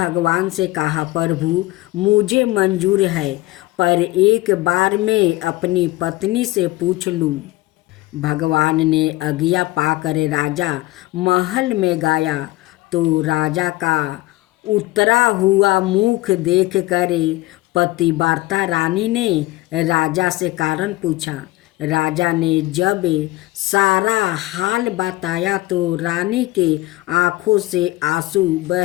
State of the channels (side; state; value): right; quieter; 19.3 dB